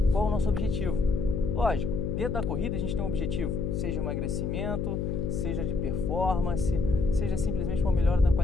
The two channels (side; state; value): left; noise; hum, 1 dB below the sound